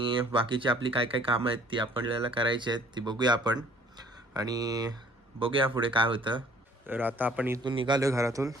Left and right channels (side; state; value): both; normal; correlation 0.56